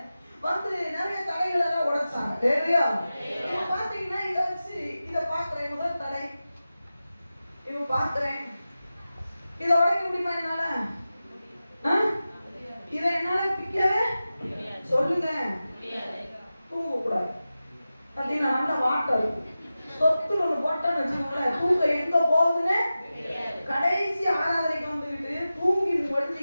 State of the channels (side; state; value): both; inverted; correlation -0.94